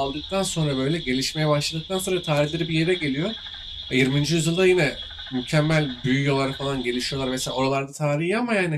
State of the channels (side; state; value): both; identical; correlation 1.00